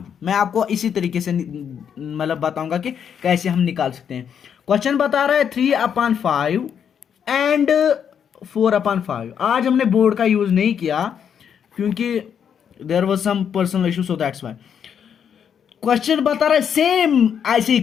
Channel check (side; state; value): right; quieter; 8.0 dB